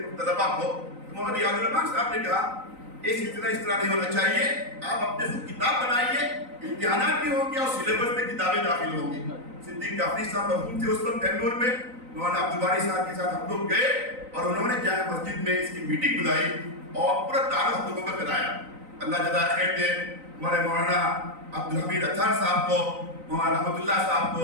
طلبا کو۔ مولانا ریاض الرحمان صاحب نے کہا یہ سلسلہ اس طرح نہیں ہونا چاہیے، آپ اپنے خود کتاب بنائیے، امتحانات بھی ہوں گے اور سلیبس میں کتابیں داخل ہوں گی۔ صدیق جعفری صاحب مرحوم تھے اس وقت بنگلور میں، مولانا عبدالباری صاحب کے ساتھ ہم لوگ گئے اور انہوں نے جامع مسجد میں اس کی میٹنگ بلائی اور پورا تعارف ہم لوگوں کا کرایا۔ اللہ جزائے خیر دے ہمارے مولانا عبدالحمید اطہر صاحب کو، مولانا رحمت اللہ صاحب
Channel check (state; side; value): late; left; 3.9 ms